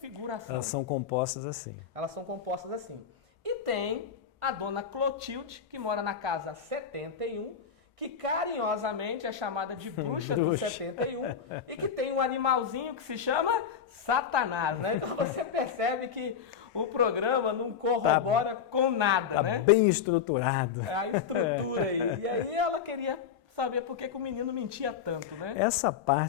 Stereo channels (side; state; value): right; quieter; 7.4 dB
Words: Elas são compostas assim. Elas são compostas assim. E tem a dona Clotilde, que mora na casa 71, que carinhosamente é chamada de bruxa do 71 e que tem um animalzinho que se chama Satanás, né? Então você percebe que o programa não corrobora com nada, né? Bem estruturado. É a estrutura aí. E aí ela queria saber por que o menino mentia tanto, né? Essa